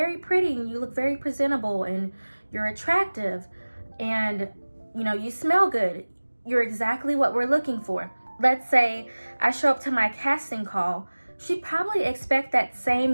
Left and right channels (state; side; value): inverted; both; correlation -1.00